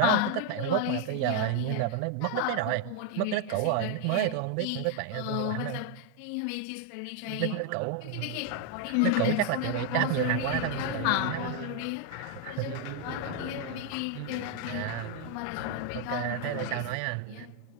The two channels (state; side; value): different; both; correlation 0.01